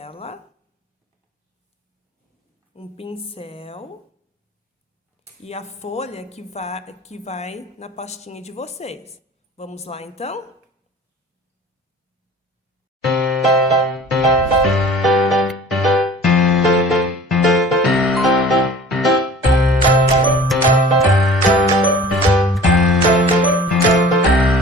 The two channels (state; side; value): normal; both; correlation 0.45